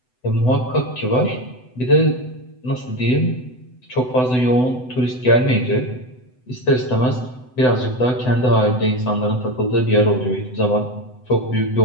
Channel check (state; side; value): late; right; 7.9 ms